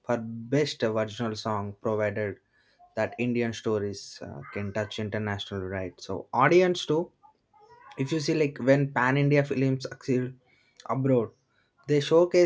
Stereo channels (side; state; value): both; identical; correlation 1.00